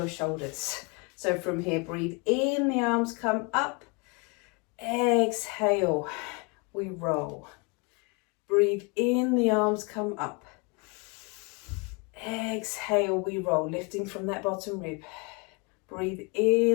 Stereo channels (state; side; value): quieter; right; 30.6 dB